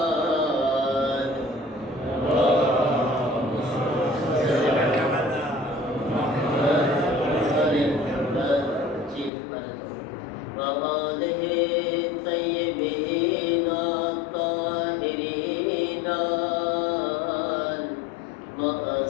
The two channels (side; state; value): right; drops out; at 9.3 s